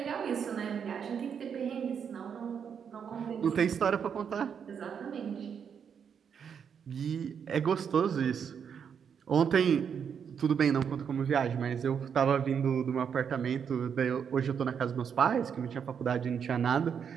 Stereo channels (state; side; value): quieter; left; 7.3 dB